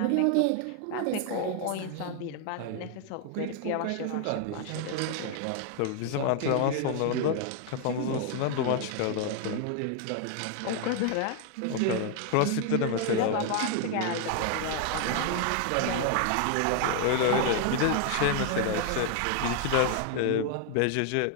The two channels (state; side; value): different; both; correlation 0.00